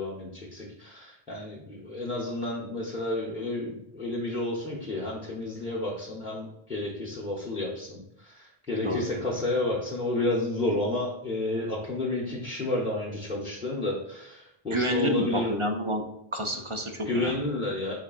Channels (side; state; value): left; late; 1.4 ms